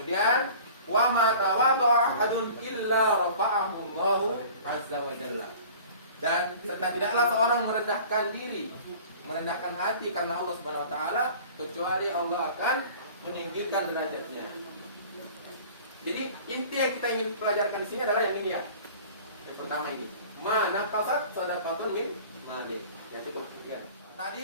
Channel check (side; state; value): both; inverted; correlation -0.44